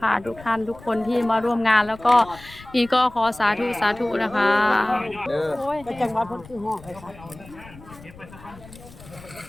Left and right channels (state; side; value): noise; left; rumble, 20 dB below the sound